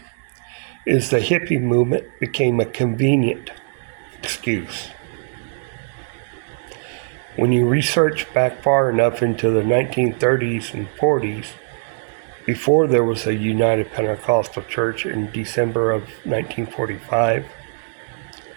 is the hippie movement became a convenient excuse. When you research back far enough into the 1930s and 40s, before there was a United Pentecostal Church in December of 1945,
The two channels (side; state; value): left; silent; digital silence